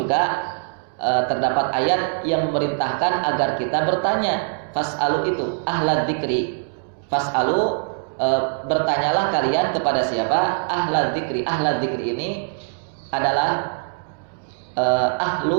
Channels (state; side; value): silent; left; 64 dB below the other